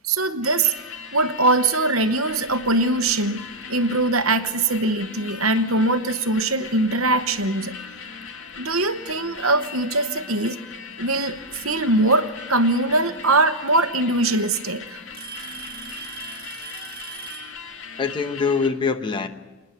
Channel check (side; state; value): both; normal; correlation 0.00